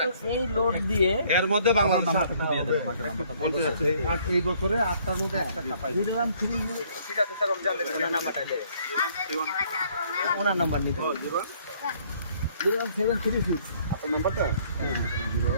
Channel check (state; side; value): inverted; both; correlation -0.62